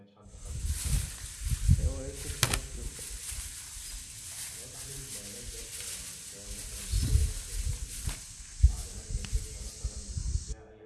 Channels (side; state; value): both; identical; correlation 1.00